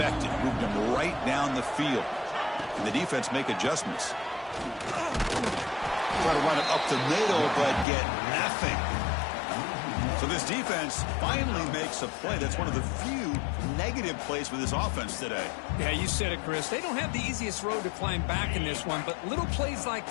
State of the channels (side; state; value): right; drops out; at 7.9 s